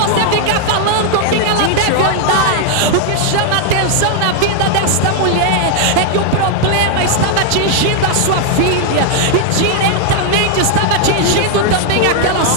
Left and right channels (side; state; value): both; different; correlation 0.00